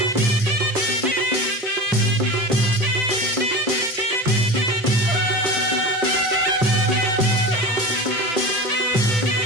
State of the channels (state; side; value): normal; both; correlation 0.30